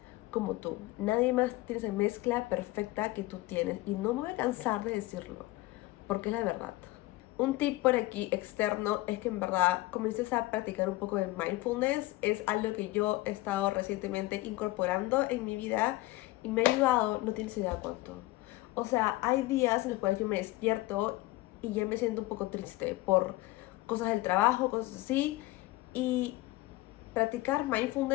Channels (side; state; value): right; quieter; 19.1 dB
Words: como tú, nadie más tiene esa mezcla perfecta que tú tienes, y no me voy a cansar de decirlo, porque es la verdad. Un tip por aquí externo es que en verdad comiences a practicar un poco de mindfulness. Es algo que yo he estado recientemente incorporando en mi vida y me ha ayudado, no tienes idea cuánto. O sea, hay días en los cuales yo me despierto y ya me siento un poco triste por cosas del trabajo, cosas así. Y practicar